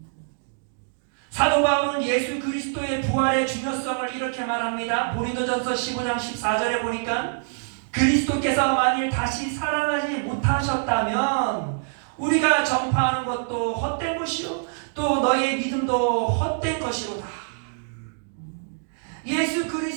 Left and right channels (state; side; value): silent; left; digital silence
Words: 사도 바울은 예수 그리스도의 부활의 중요성을 이렇게 말합니다. 고린도전서 15장 14절에 보니까 그리스도께서 만일 다시 살아나지 못하셨다면 우리가 전파하는 것도 헛된 것이요 또 너의 믿음도 헛된 것이로다. 예수